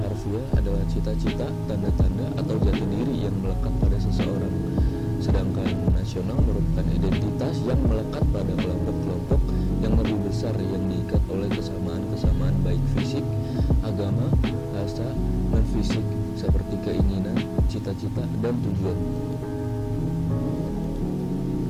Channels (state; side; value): identical; both; correlation 1.00